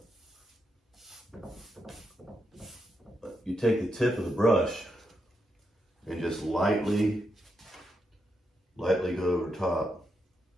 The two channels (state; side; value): normal; both; correlation 0.83